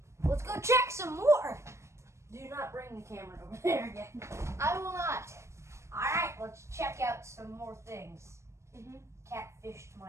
let's go check some more. Do not bring the camera over there again. I will not. All right, let's check out some more things. Mm-hmm. Catfished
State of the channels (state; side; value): late; left; 0.13 ms